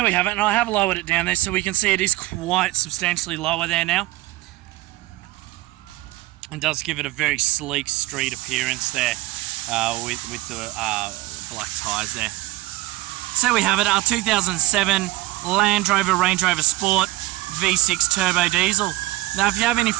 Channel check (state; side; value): quieter; left; 19.0 dB